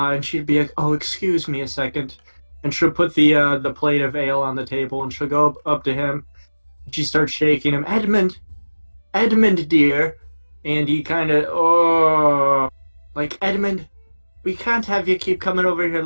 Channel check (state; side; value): inverted; both; correlation -1.00